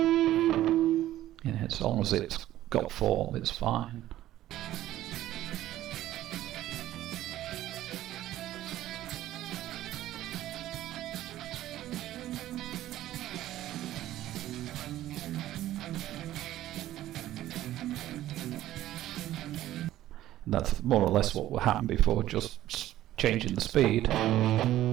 Yeah, as long as it's got form, it's fine. That's more or less what happened before, just changing the speed. Yeah,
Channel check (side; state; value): left; quieter; 13.9 dB